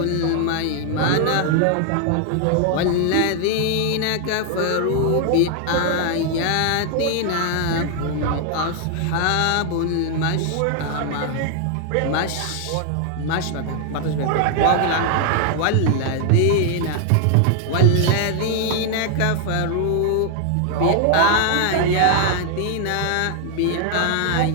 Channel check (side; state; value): both; different; correlation 0.00